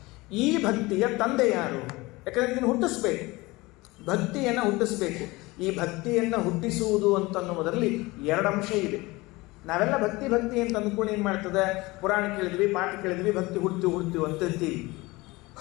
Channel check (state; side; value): quieter; right; 22.0 dB